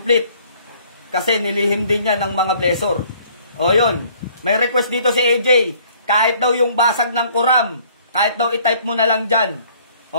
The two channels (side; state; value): both; inverted; correlation -0.59